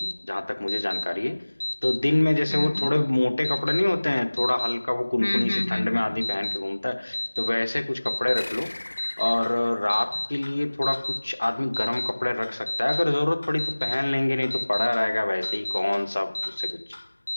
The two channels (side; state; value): both; inverted; correlation -1.00